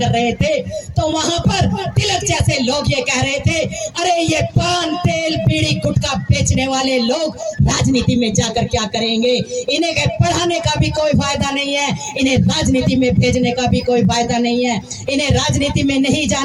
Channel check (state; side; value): identical; both; correlation 1.00